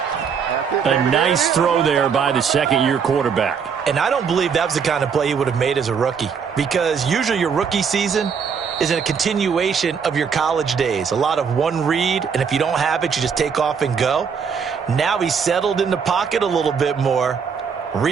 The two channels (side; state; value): left; quieter; 6.5 dB